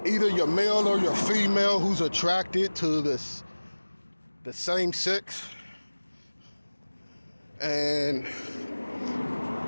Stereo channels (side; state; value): both; inverted; correlation -1.00